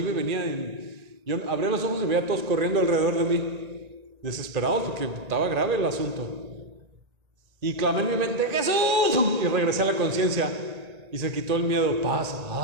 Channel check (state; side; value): late; left; 1.9 ms